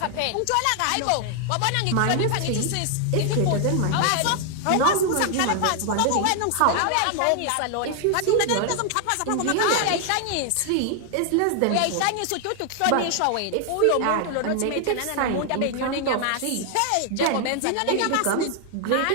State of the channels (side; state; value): both; different; correlation 0.00